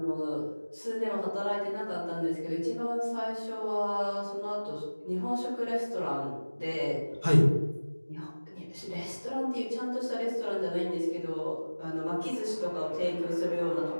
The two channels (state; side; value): inverted; both; correlation -1.00